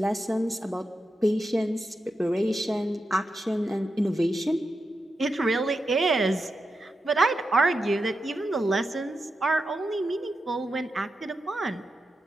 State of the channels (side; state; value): both; normal; correlation 0.88